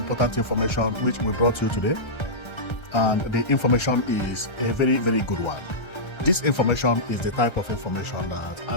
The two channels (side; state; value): right; late; 1.3 ms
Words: information which we brought you today, and the information is a very, very good one. This information is the type of information that I